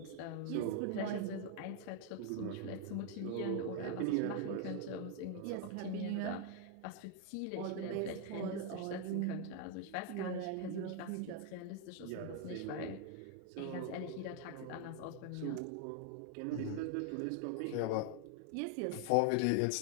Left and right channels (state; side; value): different; both; correlation 0.00